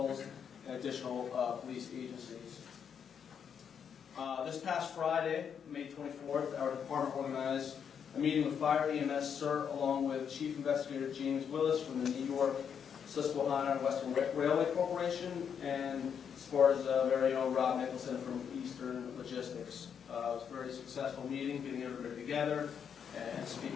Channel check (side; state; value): right; quieter; 7.5 dB